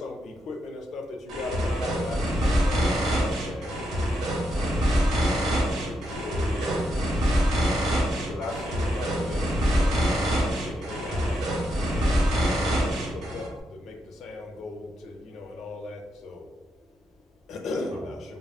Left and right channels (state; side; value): normal; both; correlation 0.82